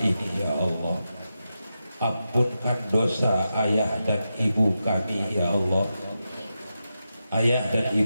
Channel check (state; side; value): inverted; both; correlation -0.89